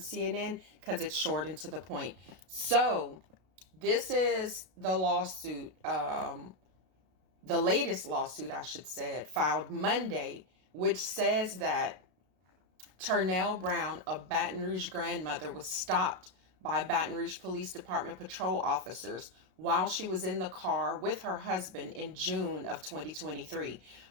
because it's short and to the point. So this is the lawsuit, the latest lawsuit, I should say, filed Monday, which says that Turnell Brown, a Baton Rouge grandmother, was stopped by Baton Rouge Police Department patrol officers while she was in the car with her husband in June of 2023.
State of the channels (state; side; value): late; left; 32 ms